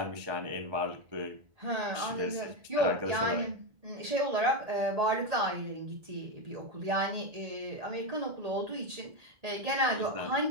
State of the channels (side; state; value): left; late; 1.8 ms